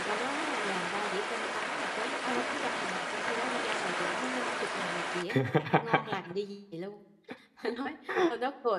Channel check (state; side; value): identical; both; correlation 1.00